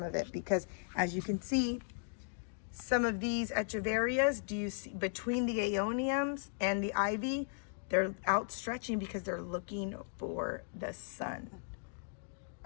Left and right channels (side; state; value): right; silent; digital silence